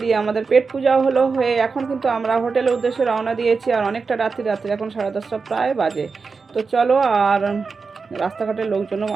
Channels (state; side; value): quieter; left; 4.8 dB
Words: দিয়ে আমাদের পেট পূজাও হলো হয়ে এখন কিন্তু আমরা হোটেলের উদ্দেশ্যে রওনা দিয়েছি। আর অনেকটা রাত্রি এখন 10:30 প্রায় বাজে। তো চলো, আর রাস্তাঘাটের লোকজনও